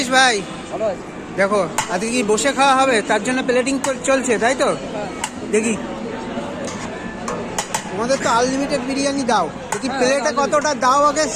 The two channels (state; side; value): identical; both; correlation 1.00